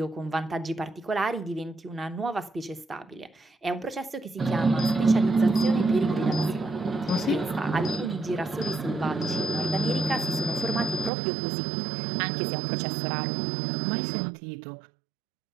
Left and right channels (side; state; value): left; drops out; at 11.1 s